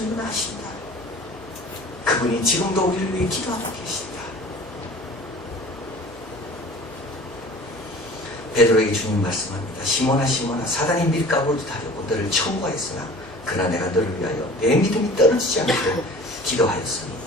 아신다. 그분이 지금도 우리를 위해 기도하고 계신다. 베드로에게 주님 말씀합니다. 시몬아 시몬아 사단이 밀가루를 타려고 너를 청구하였으나 그러나 내가 너를 위하여 내 믿음이 떨어지지 않게 기도하였으니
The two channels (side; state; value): both; normal; correlation 0.44